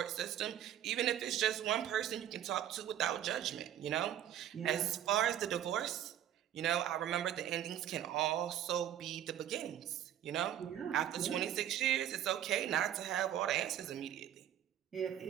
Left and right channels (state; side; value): quieter; left; 10.9 dB